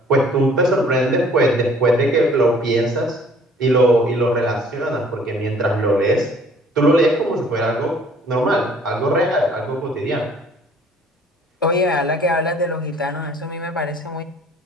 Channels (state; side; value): normal; both; correlation 0.55